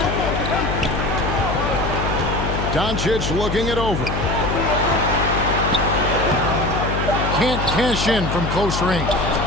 Doncic looking it over. Can't cash in from close range.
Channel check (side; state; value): left; noise; hum, 3 dB below the sound